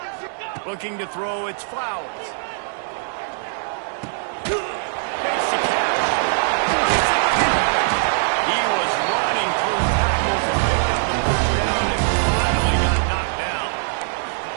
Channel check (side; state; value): left; silent; digital silence